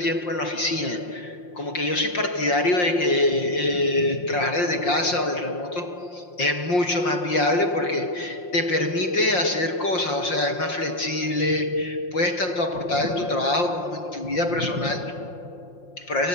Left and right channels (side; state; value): right; late; 5.6 ms